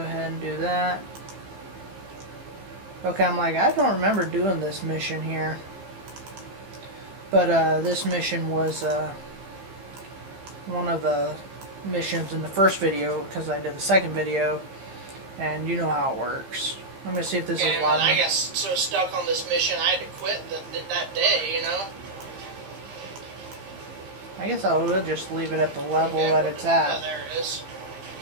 and do that. Okay, I'm like, I don't remember doing this mission here, but this mission was one of the missions in the first video because I did the second video, and you know how it works. I'm gonna see if this is live. I got so stuck on this mission, I had to quit that day, you know. I guess I will just leave it at the level that it's at. Oh, there it is.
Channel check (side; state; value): left; late; 15 ms